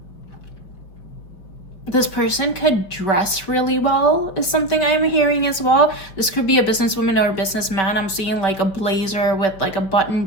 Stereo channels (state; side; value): late; right; 5.4 ms